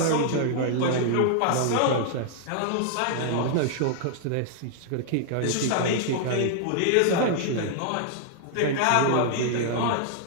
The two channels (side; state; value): both; different; correlation -0.01